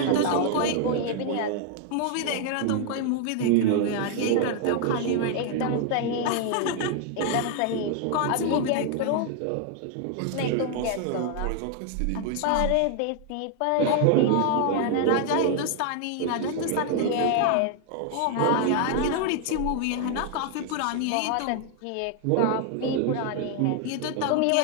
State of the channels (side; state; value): both; different; correlation 0.00